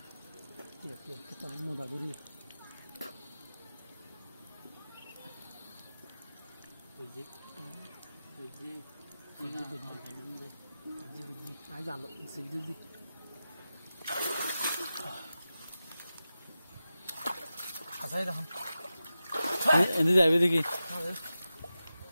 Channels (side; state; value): both; inverted; correlation -0.93